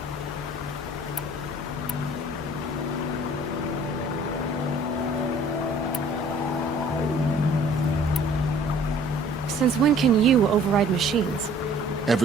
Since when can you override machines?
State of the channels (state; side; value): normal; both; correlation 0.53